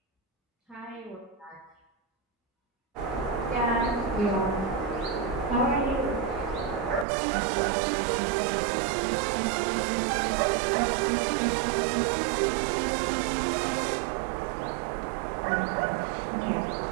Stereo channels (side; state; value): left; drops out; at 7.1 s